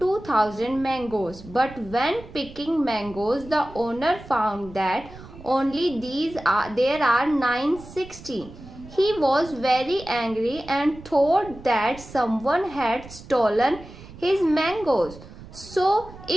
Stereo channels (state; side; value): noise; right; rumble, 17 dB below the sound